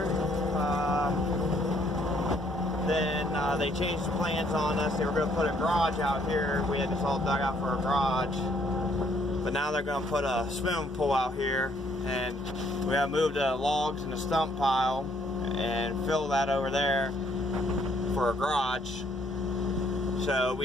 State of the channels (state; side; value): normal; both; correlation 0.67